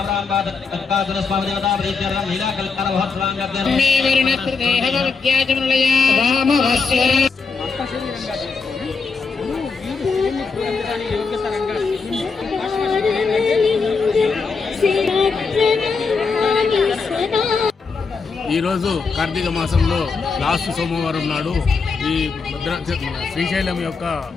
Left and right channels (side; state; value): right; quieter; 4.8 dB